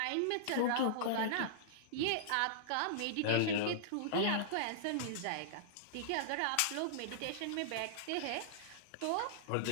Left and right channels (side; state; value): both; different; correlation -0.02